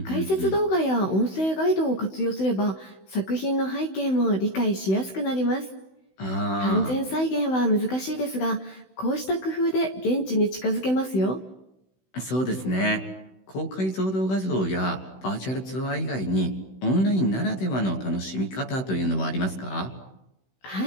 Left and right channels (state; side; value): late; right; 16 ms